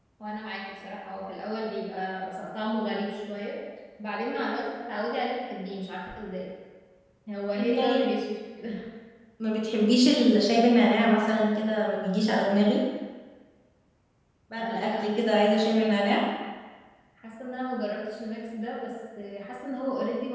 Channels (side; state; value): both; identical; correlation 1.00